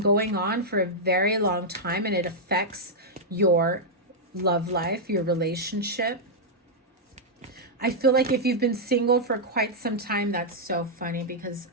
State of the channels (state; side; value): normal; both; correlation -0.05